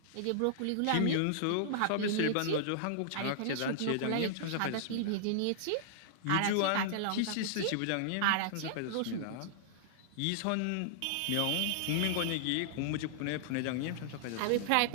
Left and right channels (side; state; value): both; different; correlation -0.01